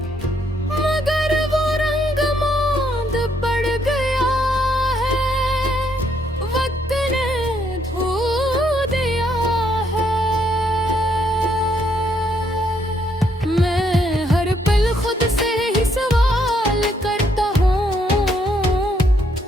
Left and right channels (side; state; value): both; normal; correlation 0.72